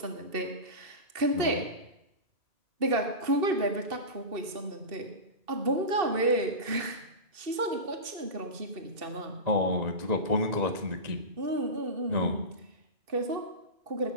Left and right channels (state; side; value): late; left; 2.7 ms